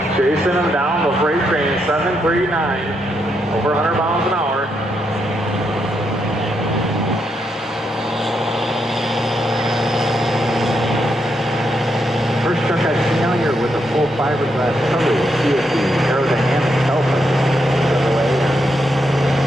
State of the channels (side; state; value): both; normal; correlation 0.80